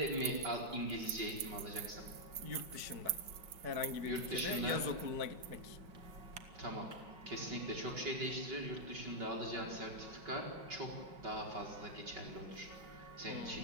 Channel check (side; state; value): left; late; 5.3 ms